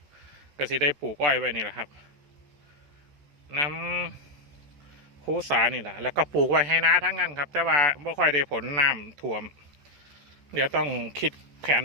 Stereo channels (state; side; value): late; left; 14 ms